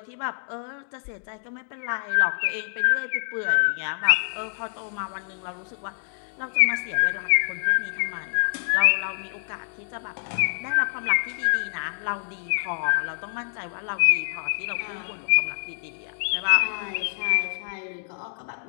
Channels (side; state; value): right; silent; digital silence